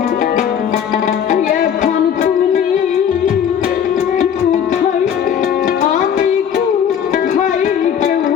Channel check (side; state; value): right; quieter; 8.5 dB